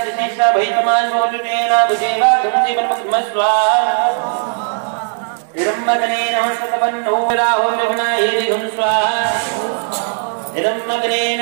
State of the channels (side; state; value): left; silent; 56 dB below the other